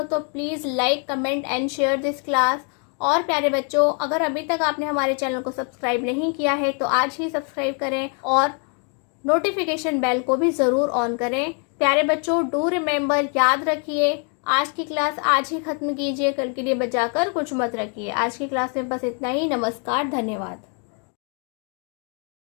तो please like, comment and share this class. और प्यारे बच्चों, अगर अभी तक आपने हमारे चैनल को सब्सक्राइब नहीं किया है तो आज ही सब्सक्राइब करें, और नोटिफिकेशन बेल को भी ज़रूर ऑन करें। प्यारे बच्चों, डू रिमेंबर, याद रखिए, आज की क्लास आज ही ख़त्म कीजिए, कल के लिए बचाकर कुछ मत रखिए। आज की क्लास में बस इतना ही। नमस्कार, धन्यवाद।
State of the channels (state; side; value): quieter; right; 39.9 dB